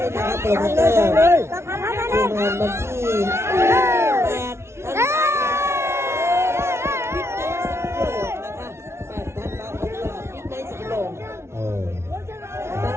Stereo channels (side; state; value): left; late; 0.13 ms